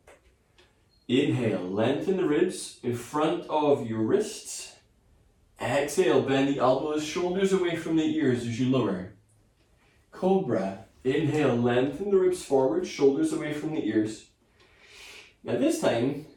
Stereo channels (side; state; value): both; identical; correlation 1.00